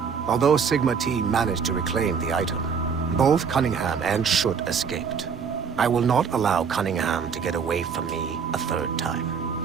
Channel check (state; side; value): quieter; left; 6.3 dB